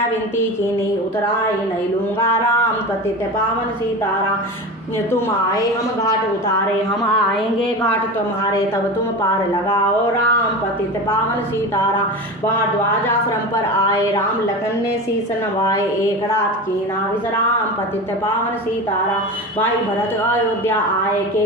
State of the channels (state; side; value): normal; both; correlation 0.28